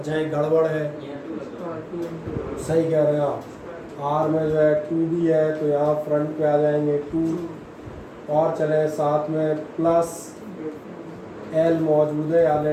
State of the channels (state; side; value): identical; both; correlation 1.00